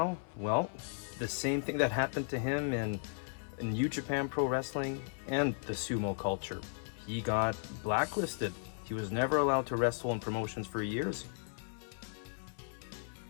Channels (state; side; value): silent; right; 54 dB below the other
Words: Well, the same thing that happened to him in New Japan Pro Wrestling and the sumo culture. He got blacklisted. He was never allowed to wrestle in promotions for years.